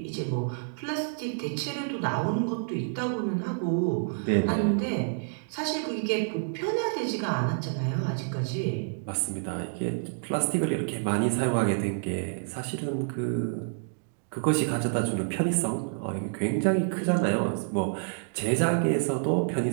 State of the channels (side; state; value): left; silent; digital silence